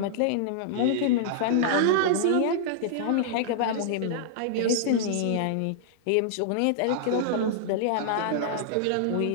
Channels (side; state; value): both; different; correlation -0.01